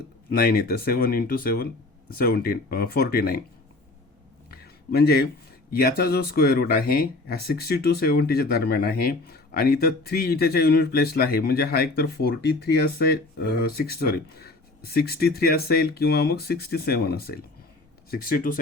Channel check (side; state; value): right; quieter; 3.1 dB